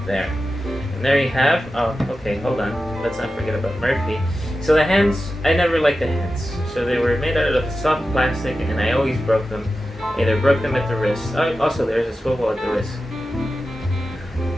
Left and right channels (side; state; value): both; normal; correlation 0.92